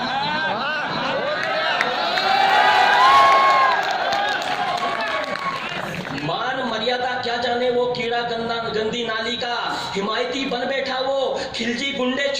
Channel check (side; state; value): both; identical; correlation 1.00